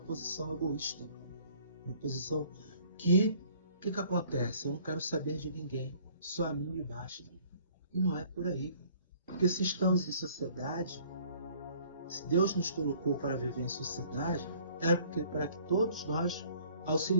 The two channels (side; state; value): both; inverted; correlation -0.56